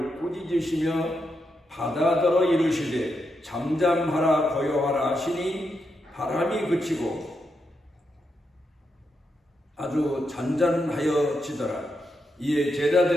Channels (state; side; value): normal; both; correlation 0.83